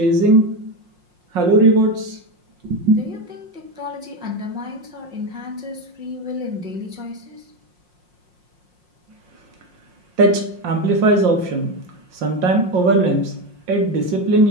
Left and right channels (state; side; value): late; left; 5.6 ms